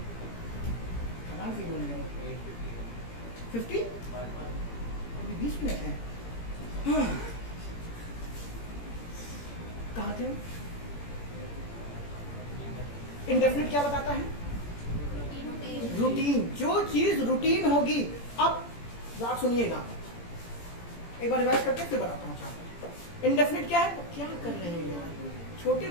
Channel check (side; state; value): right; late; 17 ms